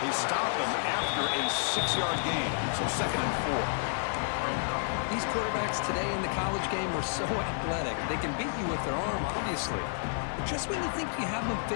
stop him after a 6-yard gain, so 2nd and 4. These quarterbacks today in the college game are so athletic. They can beat you with their arm, obviously. But just when you think you have them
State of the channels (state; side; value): silent; right; digital silence